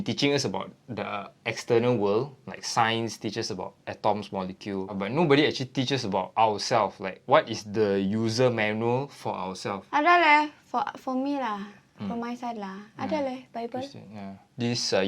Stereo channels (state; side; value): identical; both; correlation 1.00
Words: teaching us about the external world, like science teaches about atoms, molecule, but nobody actually teaches about ourselves, like what is the user manual for ourselves. Ada leh, for me lah. From my side lah. Ada leh, Bible. Yeah. This